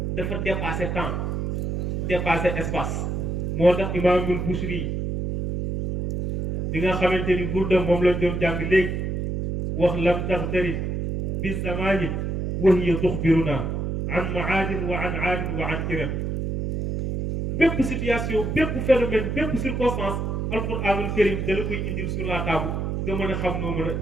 dafa dépassé temps dépassé espace moo tax imaamul Busiri bi nga xamante ni burda moom lañ doon jàng léegi wax lam taxtarib bi zamanin wa hiya tuxbiruna an maadin wa an aadin wa an iram bépp situation bépp phénomène bépp circonstance alquranul karim da la koy indil sur la table nga mën a xam noo mën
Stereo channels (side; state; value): right; noise; hum, 2 dB below the sound